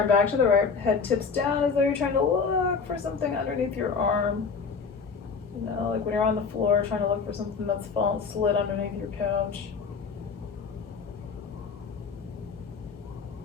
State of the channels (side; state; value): right; quieter; 5.3 dB